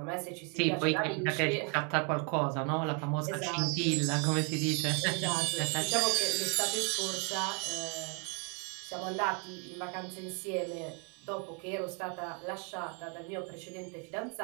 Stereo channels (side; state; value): left; quieter; 36.0 dB